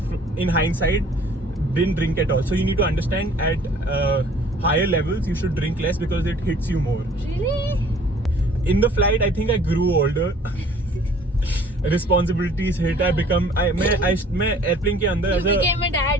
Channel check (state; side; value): normal; both; correlation 0.53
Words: in hindsight didn't drink at all. So you need to understand at higher levels you should drink less because it hits you more. Really? In the flight, I think I grew older. Responsibilities hit. I मैं airplane के अंदर You became a